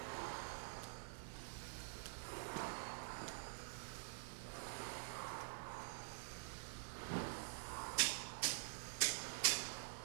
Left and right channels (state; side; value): silent; left; digital silence